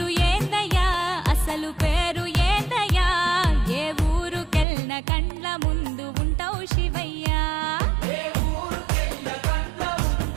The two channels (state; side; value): drops out; left; at 4.7 s